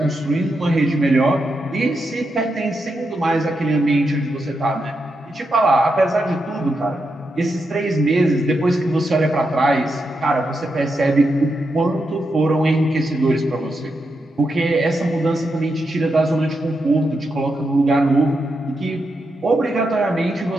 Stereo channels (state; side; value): normal; both; correlation 0.85